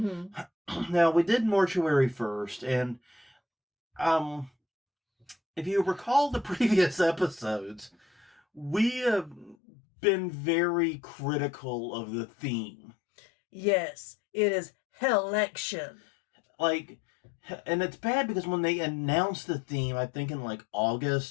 Now, we did Mortuary first, and if you recall the previous episodes, we have been very critical of the theme. Yes, it is Hell-lection. And it's bad because when they announced the theme, I think in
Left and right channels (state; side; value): drops out; right; at 9.6 s